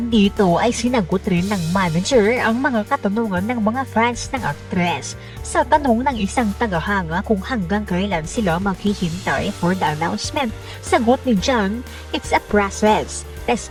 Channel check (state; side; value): identical; both; correlation 1.00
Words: dito ay sinagot rin ng manager ang mga katanungan ng mga fans ng aktres. Sa tanong ng isang tagahanga kung hanggang kailan sila maghihintay for the announcement, sagot ni John, "It's a process. Rest